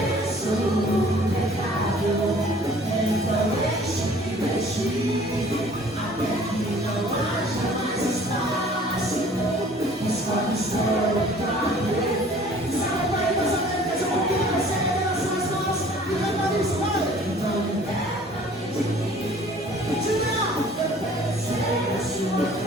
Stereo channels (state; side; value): normal; both; correlation 0.52